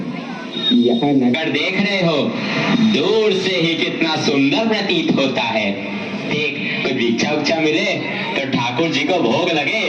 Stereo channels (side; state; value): both; identical; correlation 1.00